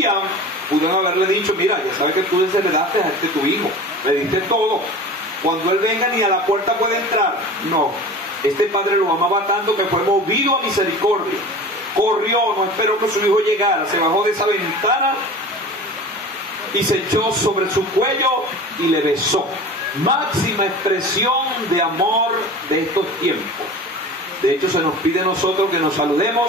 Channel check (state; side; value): normal; both; correlation 0.37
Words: pudieron haberle dicho: mira, ya sabes que tú desheredaste a tu hijo, le diste todo. Cuando él venga ni a la puerta puede entrar. No, este padre lo amaba tanto que fue movido a misericordia. Corrió, no esperó que su hijo llegara, se bajó de esa ventana y se echó sobre su cuello y le besó. Máxima expresión de amor de estos tiempos. De hecho, se nos pide a nosotros que nos